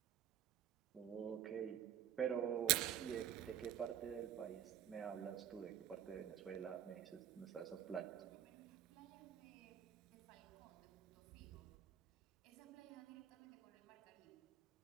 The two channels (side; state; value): left; quieter; 10.4 dB